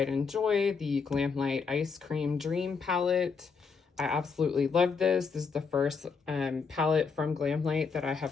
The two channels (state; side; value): quieter; right; 5.3 dB